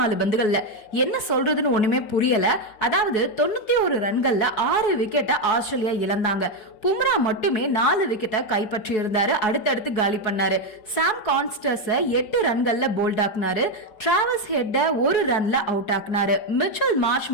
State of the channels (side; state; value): right; late; 4.7 ms